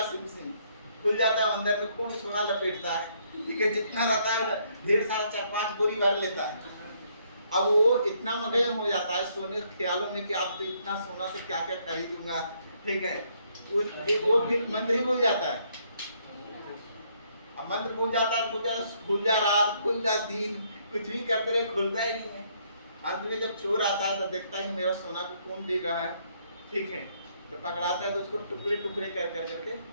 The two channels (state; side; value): inverted; both; correlation -0.69